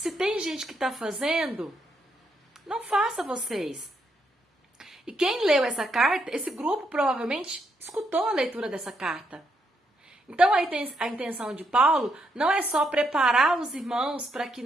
tem gente que está fazendo, não faça vocês. E quem leu essa carta, esse grupo provavelmente escutou a leitura dessa carta. Então a intenção de Paulo não é só preparar os irmãos para que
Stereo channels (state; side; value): normal; both; correlation 0.77